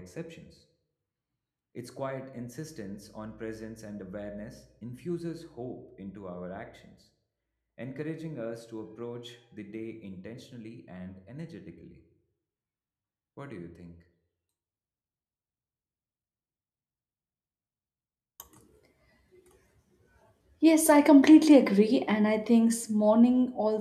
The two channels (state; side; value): identical; both; correlation 1.00